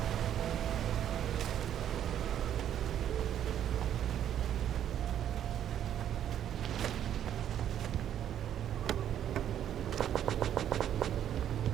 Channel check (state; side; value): quieter; left; 10.2 dB